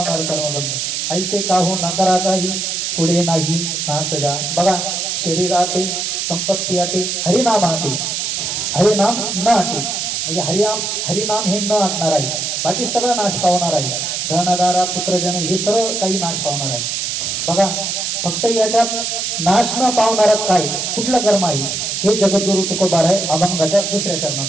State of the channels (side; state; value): right; noise; hiss, 2 dB below the sound